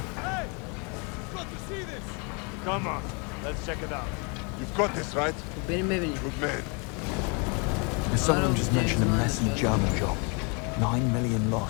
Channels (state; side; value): quieter; right; 33.6 dB